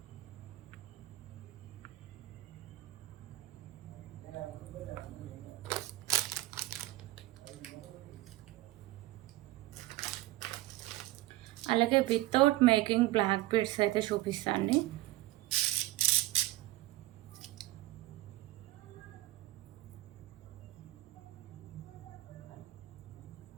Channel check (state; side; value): quieter; left; 17.6 dB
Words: అలాగే వితౌట్ మేకింగ్ బ్లాక్ బీడ్స్ అయితే చూపిస్తాండి.